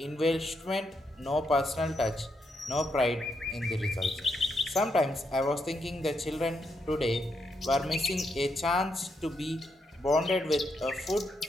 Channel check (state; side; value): normal; both; correlation 0.80